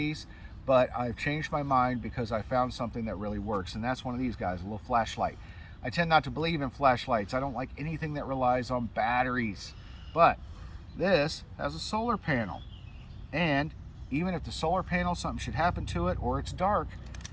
but I've changed my mind because I found something that really works, and that's one of these guys, a little flashlight. I tend not to believe in flashlights. I don't like anything that relies on batteries, but this has a solar panel, and even if the solar panel, something should happen to it, or it's dark,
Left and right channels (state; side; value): identical; both; correlation 1.00